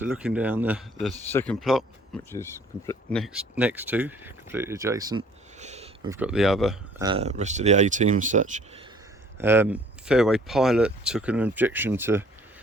looking down the second plot, which is next to, completely adjacent, we've got the other rest of the A-team and such. Fairway Pilot took an objection to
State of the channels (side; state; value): both; normal; correlation 0.56